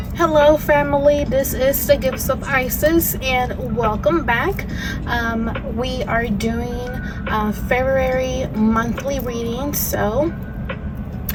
Hello family, this is the Gifts of Isis and welcome back. We are doing February monthly reading. So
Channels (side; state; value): both; identical; correlation 1.00